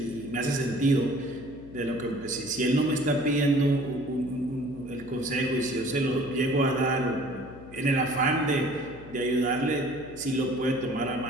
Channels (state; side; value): noise; left; hum, 17 dB below the sound